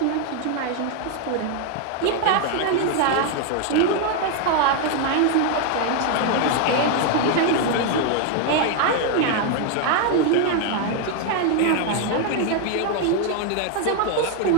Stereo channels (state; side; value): different; both; correlation 0.00